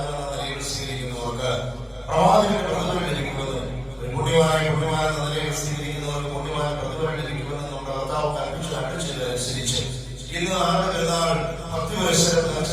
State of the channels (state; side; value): identical; both; correlation 1.00